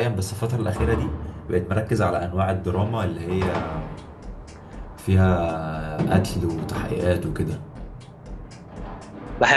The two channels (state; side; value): identical; both; correlation 1.00